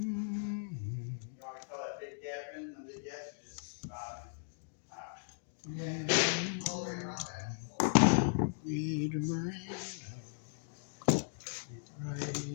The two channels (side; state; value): right; silent; digital silence